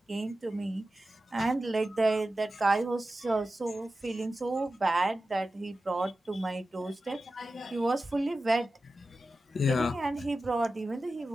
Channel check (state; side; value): normal; both; correlation 0.94